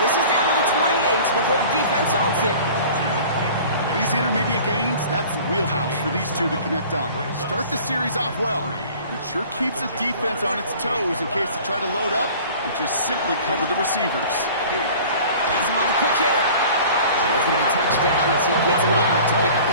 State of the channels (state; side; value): inverted; both; correlation -0.45